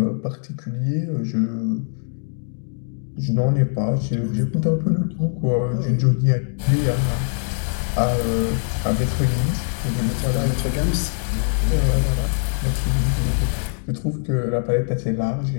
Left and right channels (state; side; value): silent; right; 64 dB below the other